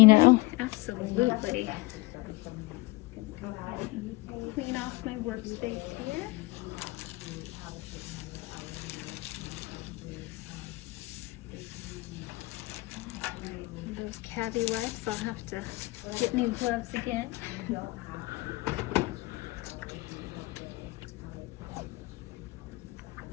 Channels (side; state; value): right; quieter; 22.2 dB